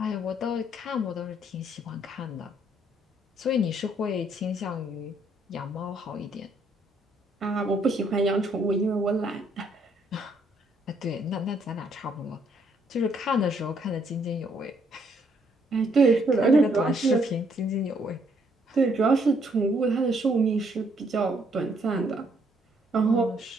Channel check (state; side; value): normal; both; correlation 0.69